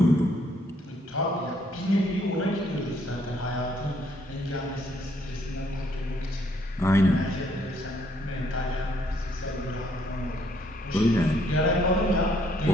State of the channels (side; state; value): both; normal; correlation 0.68